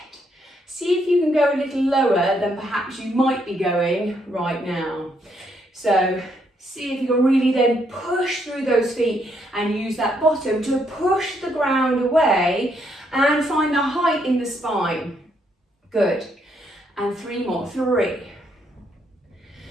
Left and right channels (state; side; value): normal; both; correlation 0.74